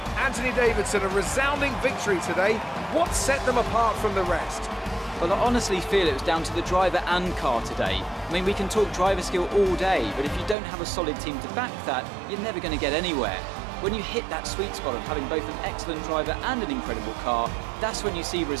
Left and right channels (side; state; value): left; drops out; at 10.6 s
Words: Anthony Davidson, a resounding victory today. What set them apart from the rest? Well, I honestly feel it was down to the driver and car today. I mean, we can talk driver skill all day, but if you don't have a solid team to back that, you're never going to get anywhere. When you hit that sweet spot of having both an excellent driver and an incredible car, that's when you see